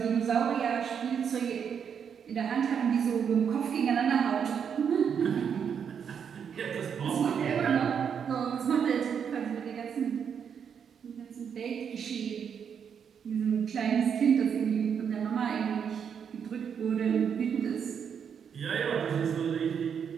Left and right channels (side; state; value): left; quieter; 7.4 dB